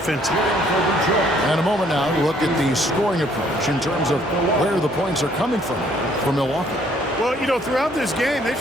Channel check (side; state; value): both; normal; correlation 0.64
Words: And a moment now to look at the scoring approach in terms of where the points are coming from for Milwaukee. Well, you know, throughout this game, they've